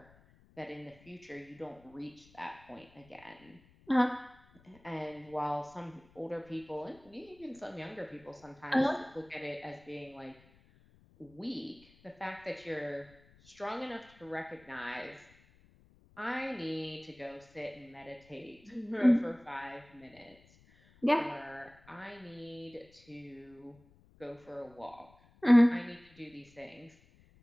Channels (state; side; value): noise; left; rumble, 27 dB below the sound